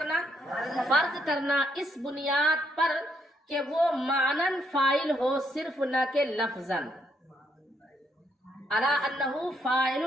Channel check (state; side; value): normal; both; correlation 0.74